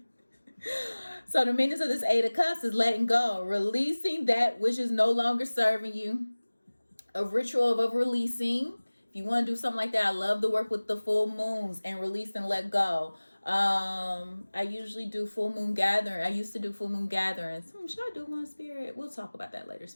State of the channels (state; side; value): inverted; both; correlation -1.00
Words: So the meaning of this Eight of Cups is letting go, releasing that which is no longer serving you. A ritual of releasing. If you want to do something like that, I love to work with the full moons and release and let go. I usually do full moon gathering. I used to do full moon gatherings. Should I do one, Spirit? We'll talk about that later,